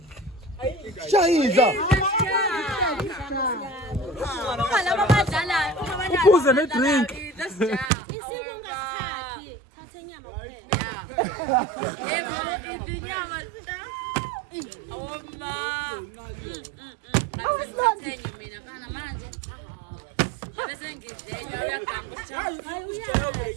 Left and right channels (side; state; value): left; drops out; at 7.9 s